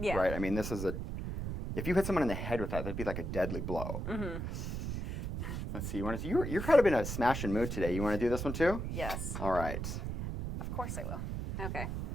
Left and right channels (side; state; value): right; noise; rumble, 4 dB below the sound